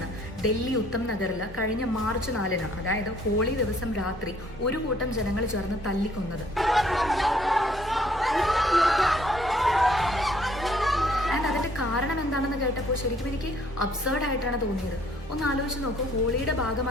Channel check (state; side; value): normal; both; correlation 0.62